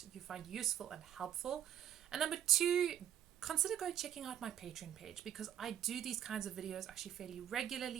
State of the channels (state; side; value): quieter; left; 10.6 dB